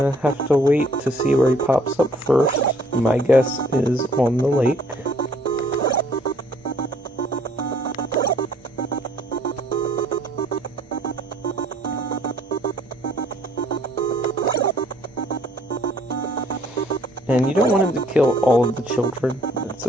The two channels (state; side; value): normal; both; correlation 0.61